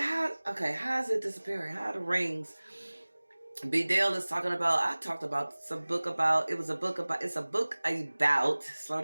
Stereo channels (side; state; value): both; inverted; correlation -1.00